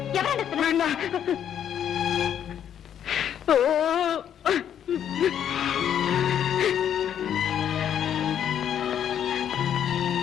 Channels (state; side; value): quieter; right; 9.5 dB